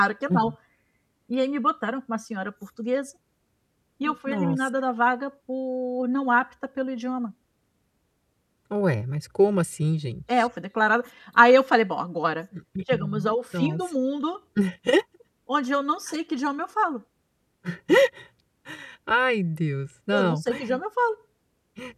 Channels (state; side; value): identical; both; correlation 1.00